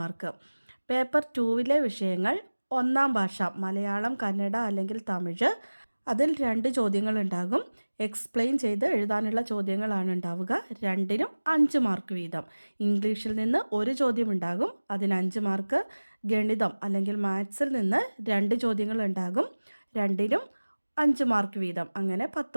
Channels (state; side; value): inverted; both; correlation -1.00